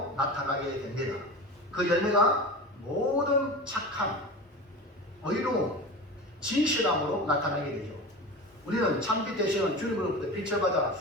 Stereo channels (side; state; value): both; normal; correlation 0.30